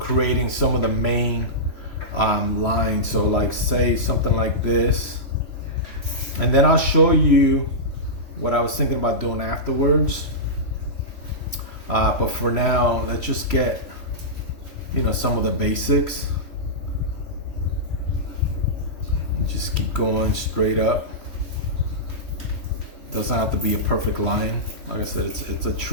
some of the main lines. So, like, say something like this, and then I'll show you what I was thinking about doing afterwards. But for now, let's just get some of the basics. Just keep going straight up. Doesn't have to be a perfect line. Like I said, it's a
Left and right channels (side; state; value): right; late; 3.1 ms